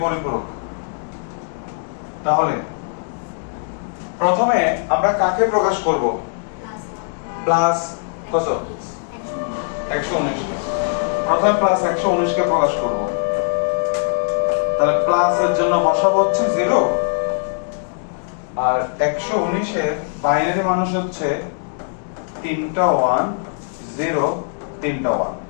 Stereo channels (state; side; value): silent; right; digital silence